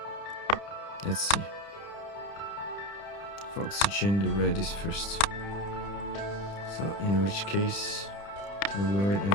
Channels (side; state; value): right; late; 30 ms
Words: let's see. For oxygen, the red is first. So in which case, we will wait